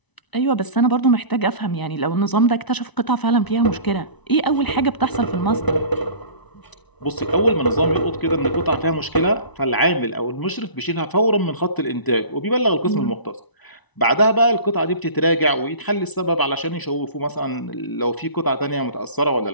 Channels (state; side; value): late; right; 1.0 ms